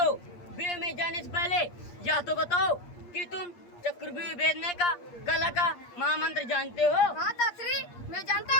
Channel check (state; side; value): late; right; 8.5 ms